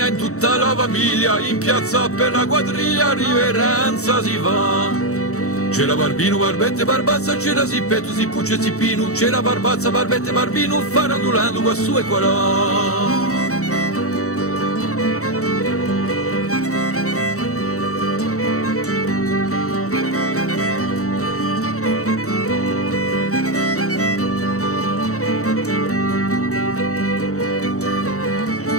in tutta la famiglia, in piazza per la quadriglia riverenza si fa. C'era Barbino, Barbette, Barbazza, c'era Zippetto, Zippucce, Zippino, c'era Barbazza, Barbette, Barbino, farandulando qua su e qua là.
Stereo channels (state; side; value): late; right; 0.65 ms